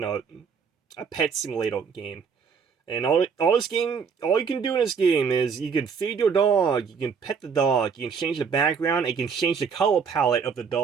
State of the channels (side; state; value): left; quieter; 6.1 dB